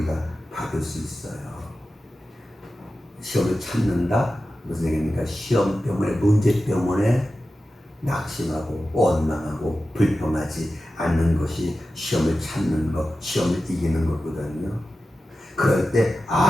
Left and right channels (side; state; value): both; normal; correlation 0.93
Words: 받을 수 있어요. 시험을 참는다? 무슨 얘기입니까? 시험 때문에, 문제 때문에 낙심하고 원망하고 불평하지 않는 것이 시험을 참는 것, 시험을 이기는 거거든요. 그럴 때